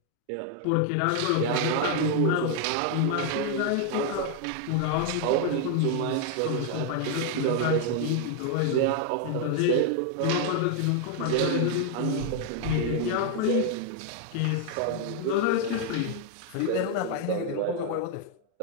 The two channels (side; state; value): both; different; correlation 0.00